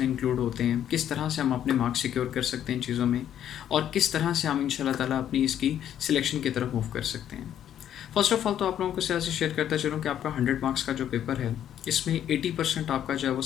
इंक्लूड होते हैं, किस तरह से हम अपने मार्क्स सिक्योर कर सकते हैं इन चीज़ों में और किस तरह से हम इंशाल्लाह ताला अपनी इसकी सिलेक्शन की तरफ मूव कर सकते हैं। फर्स्ट ऑफ ऑल तो आप लोगों को से शेयर करता चलूँ कि आपका 100 मार्क्स का जो पेपर है इसमें 80% आपका जो है वो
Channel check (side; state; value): right; quieter; 10.3 dB